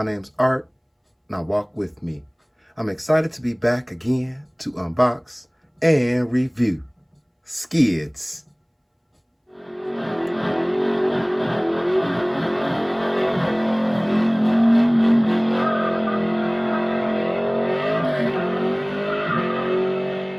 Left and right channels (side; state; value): both; identical; correlation 1.00